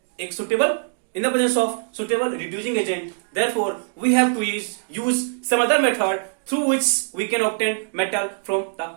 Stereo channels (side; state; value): left; silent; digital silence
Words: एक suitable reducing agent. Therefore we have to use some other method through which we can obtain metal from